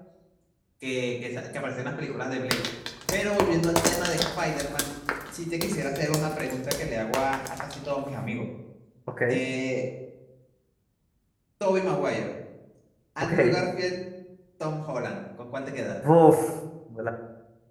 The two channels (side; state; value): both; identical; correlation 1.00